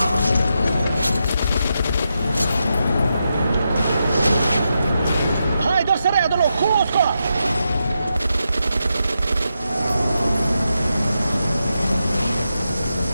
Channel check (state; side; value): inverted; both; correlation -0.86